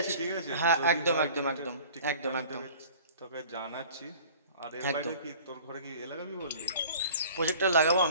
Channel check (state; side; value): inverted; both; correlation -0.46